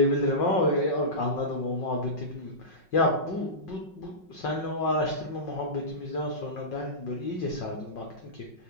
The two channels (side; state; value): right; late; 5.4 ms